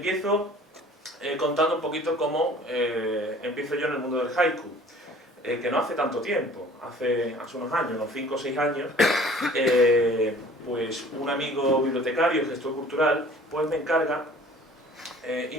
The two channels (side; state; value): both; normal; correlation 0.50